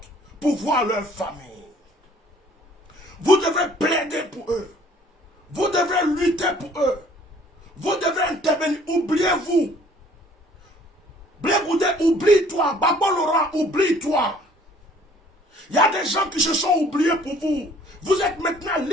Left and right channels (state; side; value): normal; both; correlation 0.57